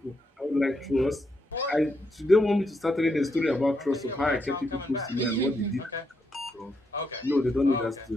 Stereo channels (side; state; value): both; normal; correlation 0.80